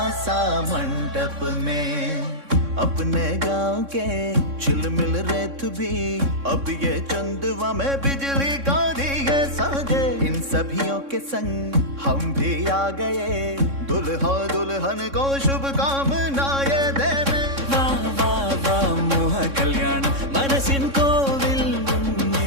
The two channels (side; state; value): left; late; 3.6 ms